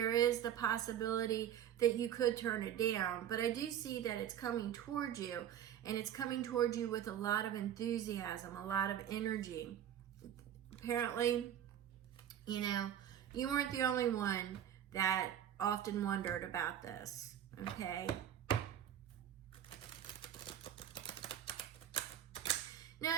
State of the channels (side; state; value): left; quieter; 10.3 dB